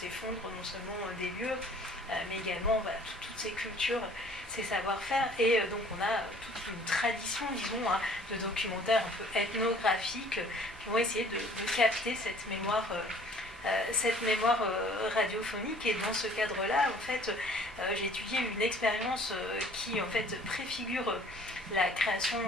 non seulement des lieux, mais également toutes ces cultures, ces savoir-faire. Et donc on a toute une tradition, disons, de documentaires un peu ethnographiques qui vont essayer de capter cette mémoire radiophonique. Et dans ce cadre-là, en fait, j'ai étudié une expérience qui en fait préfigure la création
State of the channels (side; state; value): both; normal; correlation 0.54